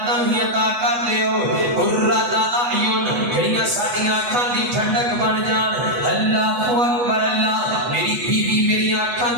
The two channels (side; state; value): left; late; 8.2 ms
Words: ہی عطا کر دیو قرۃ اعین جڑیاں ساڈیاں اکھاں دی ٹھنڈک بن جان اللہ اکبر اللہ میری بیوی میری اکھاں